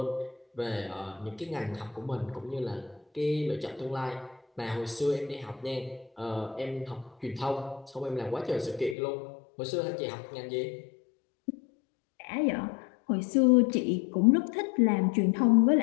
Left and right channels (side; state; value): right; drops out; at 9.0 s